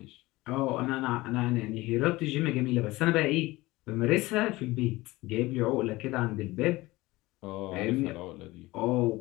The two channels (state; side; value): quieter; right; 19.9 dB